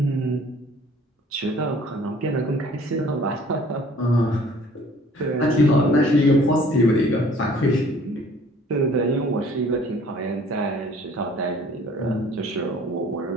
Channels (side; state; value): both; normal; correlation 0.53